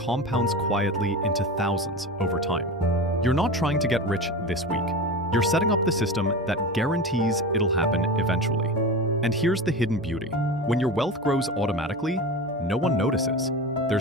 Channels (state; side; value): noise; right; hum, 28 dB below the sound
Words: quietly into thousands over time. You're not trying to get rich this week. You're setting up the system that guarantees it'll happen eventually. And here's the hidden beauty. When your wealth grows automatically, no one notices.